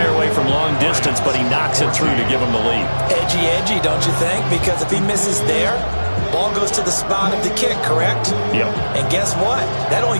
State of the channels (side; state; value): both; inverted; correlation -1.00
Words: away from long distance, but he knocks it through to give him the lead. Edgy, don't you think? Because if he misses there, ball goes to the spot of the kick, correct? Yep. And guess what? That only